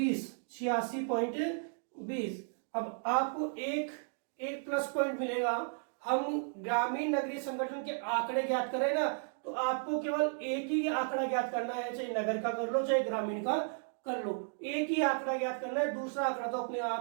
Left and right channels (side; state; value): left; silent; digital silence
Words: अब आपको एक प्लस पॉइंट मिलेगा। हम ग्रामीण नगरीय संगठन के आंकड़े ज्ञात करें ना, तो आपको केवल एक ही आंकड़ा ज्ञात करना है, चाहे नगर का कर लो चाहे ग्रामीण का कर लो, एक ही आंकड़ा ज्ञात करना है। दूसरा आंकड़ा तो अपने